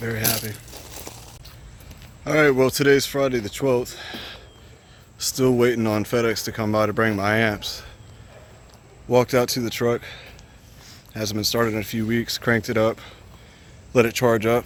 happy. Alright, well today's Friday the 12th. Still waiting on FedEx to come by to bring my amps. Walked out to the truck. Hasn't been started in a few weeks. Cranked it up. Let it charge up.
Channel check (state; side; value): identical; both; correlation 1.00